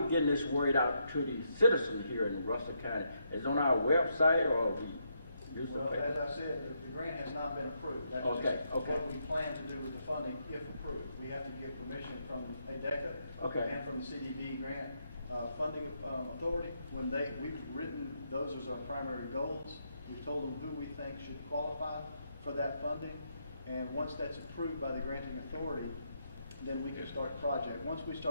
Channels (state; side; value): inverted; both; correlation -0.78